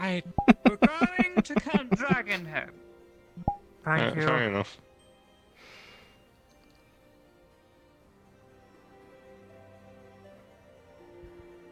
I We're going to Camp Dragonhead. thank you. Fair enough.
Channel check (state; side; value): identical; both; correlation 1.00